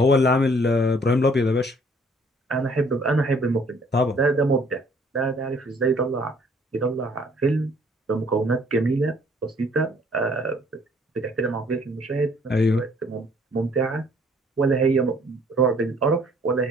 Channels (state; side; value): normal; both; correlation 0.60